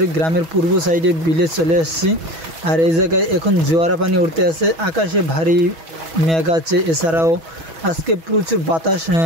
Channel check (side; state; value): left; late; 6.1 ms